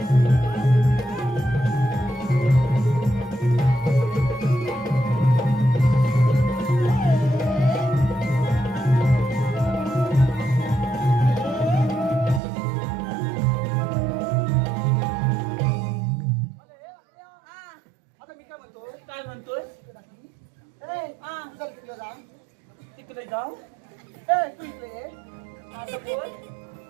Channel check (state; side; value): drops out; left; at 12.4 s